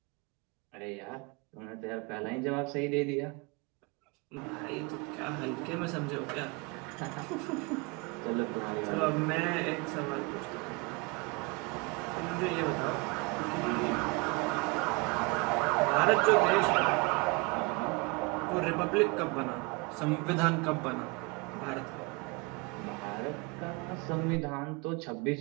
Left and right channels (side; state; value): left; quieter; 28.4 dB